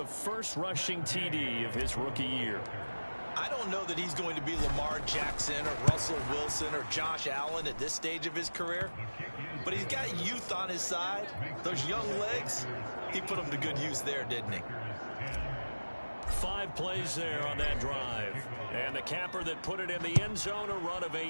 first rushing TD of his rookie year. I don't know that he's going to be Lamar Jackson or Russell Wilson or Josh Allen at this stage of his career, but he's got youth on his side. Those young legs, he put them to good use there, didn't he? 5 plays there on that drive. And the capper that put it in the end zone, a run of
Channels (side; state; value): both; inverted; correlation -1.00